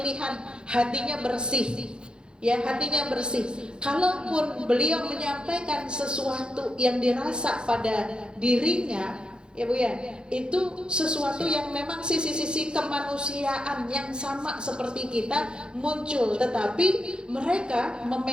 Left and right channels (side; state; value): left; late; 0.049 ms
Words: hatinya bersih, ya, hatinya bersih. Kalaupun beliau menyampaikan sesuatu yang dirasa pada dirinya, ya Bu ya, itu sesuatu yang memang sisi-sisi kemanusiaan yang sama seperti kita muncul, tetapi mereka